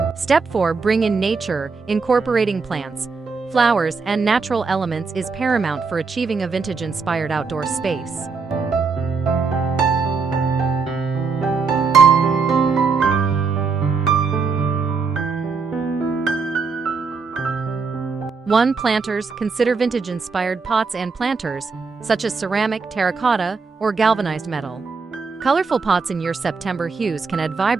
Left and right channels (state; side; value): quieter; left; 4.9 dB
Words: Step 4. Bring in nature. Incorporating plants, flowers, and natural elements is paramount for achieving a vintage-inspired outdoor space. One. Planters. Consider vintage-inspired pots and planters, such as ceramic, terracotta, or galvanized metal. Colorful pots in your September hues can add